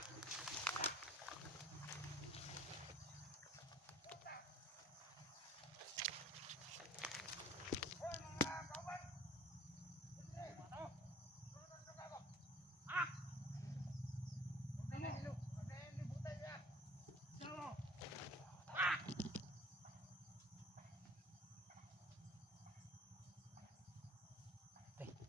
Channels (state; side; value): normal; both; correlation 0.49